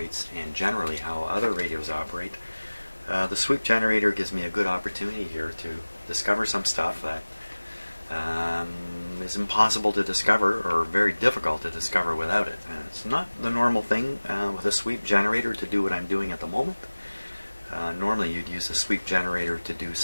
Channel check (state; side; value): inverted; both; correlation -1.00